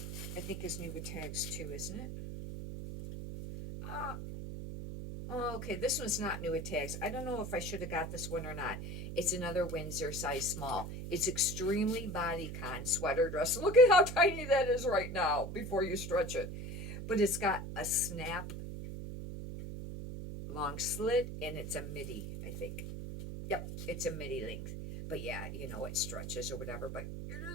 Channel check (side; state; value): right; noise; hum, 7 dB below the sound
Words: I think, is new with tags too, isn't it? Okay, this one's not new with tags. I don't know if I should have got this one or not. It's another Windsor size small. It's extremely bodycon sweater dress. Look at how tiny that is right now before you stretch it. But it's got a snap long slit, and it's a midi, I think. Yep, it's a midi length. But yeah, it stretches or whatever, but